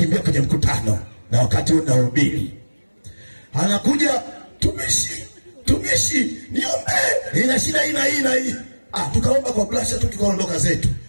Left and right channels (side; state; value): both; inverted; correlation -1.00